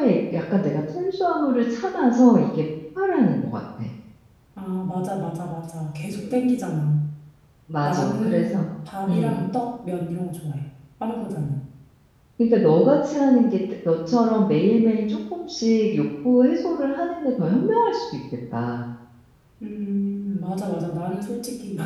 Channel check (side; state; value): both; identical; correlation 1.00